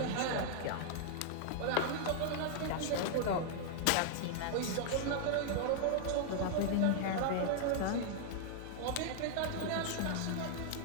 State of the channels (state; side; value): different; both; correlation -0.01